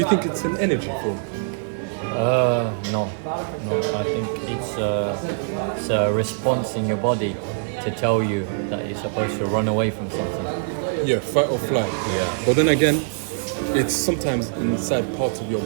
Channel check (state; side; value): silent; left; 60 dB below the other